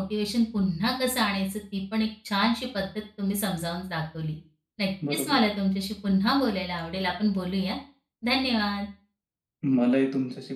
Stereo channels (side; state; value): both; identical; correlation 1.00